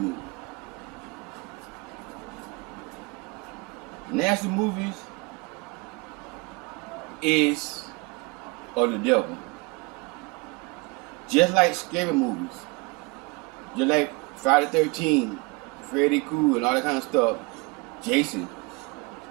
Nasty movies is of the devil. Just like scary movies. Just like Friday the 13th, Freddy Krueger and all that kind of stuff. Jason.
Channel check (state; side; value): quieter; left; 27.2 dB